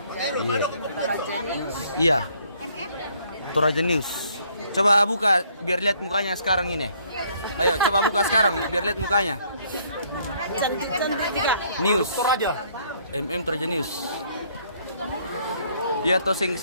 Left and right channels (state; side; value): inverted; both; correlation -0.64